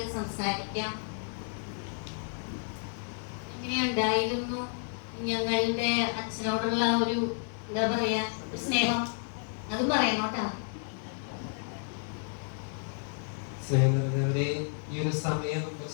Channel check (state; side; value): silent; right; 57 dB below the other